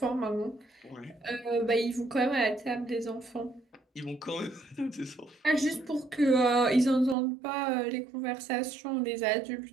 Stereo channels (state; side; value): drops out; left; at 7.2 s